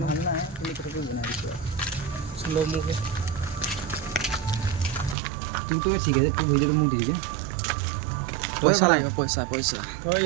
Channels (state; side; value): drops out; left; at 5.2 s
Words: নাই তুমি কেনেকৈ বনাই দিছো স্লো মুকে তুই ঠিক আছে তুই ভিডিঅ'টো মোক দি দিবি পইচা লাগিব পইচা পইচা